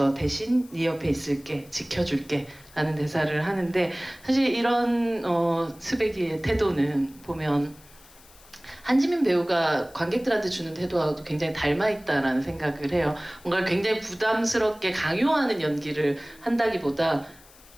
대신 네 옆에 있을게 지켜줄게 라는 대사를 하는데 사실 이런 스백이의 태도는 보면 한지민 배우가 관객들한테 주는 태도와도 굉장히 닮아있다라는 생각을 해요. 뭔가 굉장히 부담스럽게 강요하는 연기를 한다기보다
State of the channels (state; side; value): noise; left; hiss, 24 dB below the sound